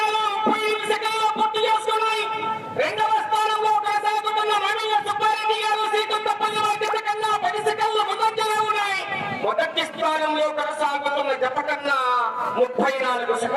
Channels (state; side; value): identical; both; correlation 1.00